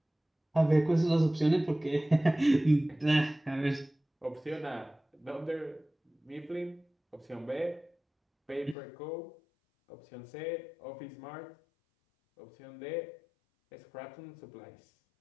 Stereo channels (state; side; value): drops out; right; at 8.8 s